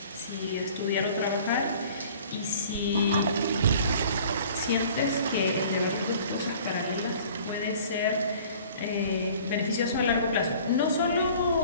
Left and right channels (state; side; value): inverted; both; correlation -0.49